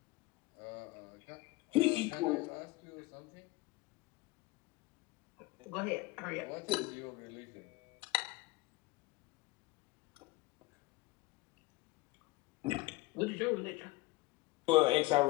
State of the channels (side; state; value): right; quieter; 20.8 dB